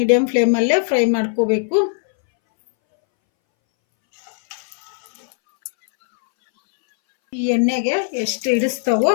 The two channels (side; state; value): right; silent; 64 dB below the other